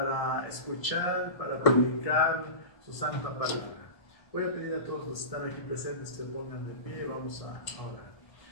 escuchar, para predicar su santa palabra. Voy a pedir a todos los que están aquí presentes que se pongan de pie y vamos a orar.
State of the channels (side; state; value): right; late; 1.7 ms